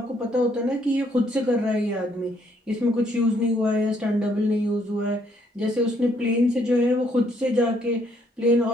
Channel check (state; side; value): normal; both; correlation 0.69